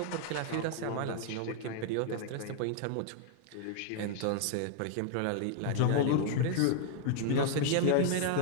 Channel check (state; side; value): different; both; correlation -0.01